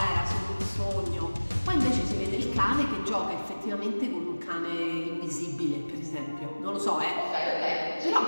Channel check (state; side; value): inverted; both; correlation -1.00